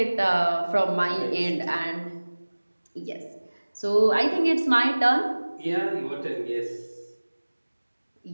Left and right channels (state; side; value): inverted; both; correlation -1.00